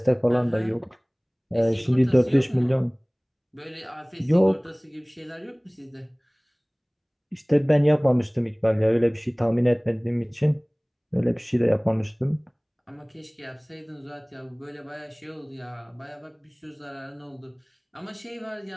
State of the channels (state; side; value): identical; both; correlation 1.00